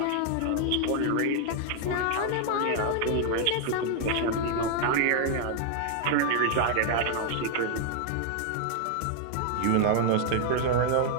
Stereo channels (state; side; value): different; both; correlation 0.00